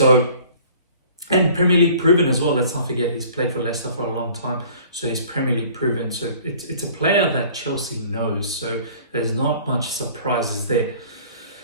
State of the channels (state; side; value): inverted; both; correlation -0.50